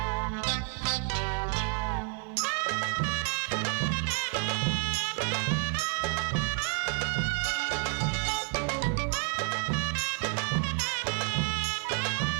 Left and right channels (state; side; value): quieter; left; 38.3 dB